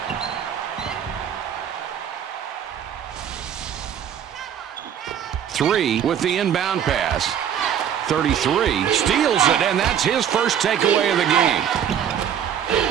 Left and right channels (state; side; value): quieter; left; 9.0 dB